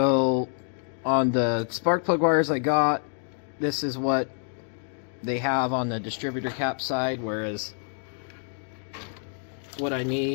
on the spark plug wires I got, this is what they have on the distributor cap side, whereas what I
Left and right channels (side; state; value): right; silent; 57 dB below the other